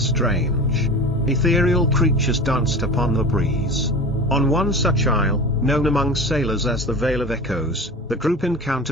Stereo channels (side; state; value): both; normal; correlation 0.34